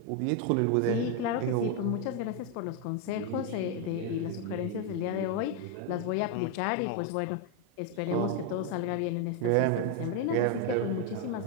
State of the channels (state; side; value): different; both; correlation 0.02